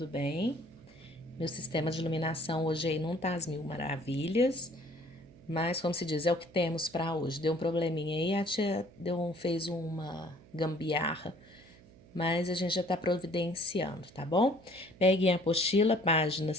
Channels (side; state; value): right; noise; hum, 24 dB below the sound